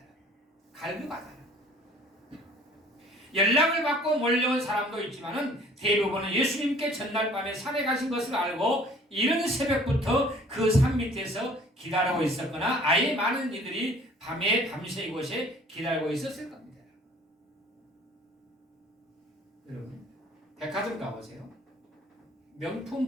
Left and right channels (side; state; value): both; normal; correlation 0.53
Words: 갈급하다는. 연락을 받고 몰려온 사람도 있지만은 대부분은 예수님께 전날 밤에 산에 가신 것을 알고 이른 새벽부터 그 산 밑에서 기다리고 있었거나 아예 많은 이들이 밤새 이곳에 기다리고 있었을 겁니다. 여러분, 백화점 가보세요.